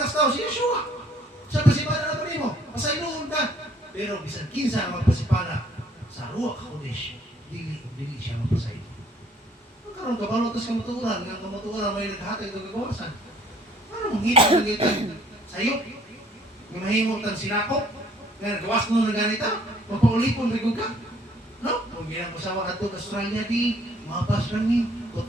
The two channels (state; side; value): normal; both; correlation 0.60